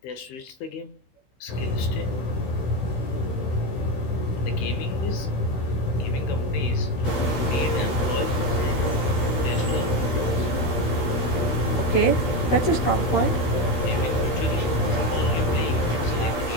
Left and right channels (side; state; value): right; late; 16 ms